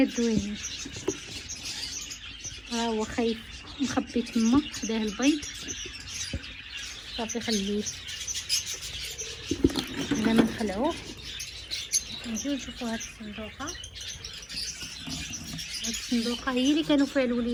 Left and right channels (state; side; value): identical; both; correlation 1.00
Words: زوينين. ها هو خايف مخبي تما خداه البيض صافي خليه. بلا ما نخلعوه نجيو نشوفوا هاد الصندوقه. هاد الصندوقه هي اللي كانوا فيها